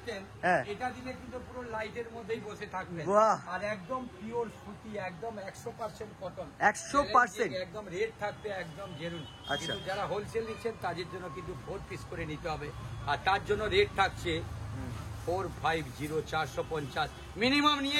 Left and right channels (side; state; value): both; identical; correlation 1.00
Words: হ্যাঁ। এটা দিলে কিন্তু পুরো লাইটের মধ্যেই বসে থাকবেন। বাহ। আর একদম পিওর সুতি, একদম 100% কটন, 100%? একদম রেট থাকবে একদম জেনুইন। আচ্ছা। কিন্তু যারা হোলসেল নিচ্ছেন তাদের জন্য কিন্তু 4 পিস করে নিতে হবে, আর তার জন্য রেট থাকছে 450, 450। মিনিমাম